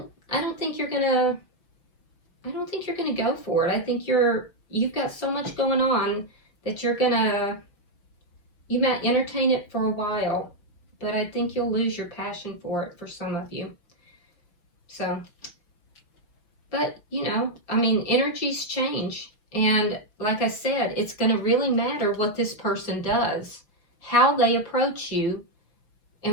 don't think you're going to, I don't think you're going to go for it. I think you've got so much going on that you might entertain it for a while, but I think you'll lose your passion for it for some of you. So, but you know, I mean, energies change. And like I said, it's going to really matter what this person does, how they approach you,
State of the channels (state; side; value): late; right; 5.8 ms